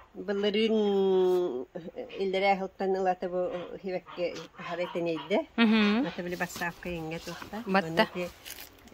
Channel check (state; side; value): identical; both; correlation 1.00